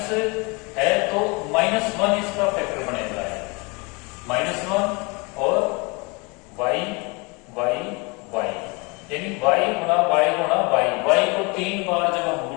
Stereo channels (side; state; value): right; quieter; 28.9 dB